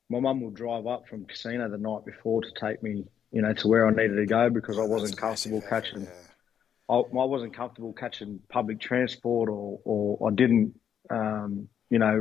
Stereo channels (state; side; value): quieter; right; 8.8 dB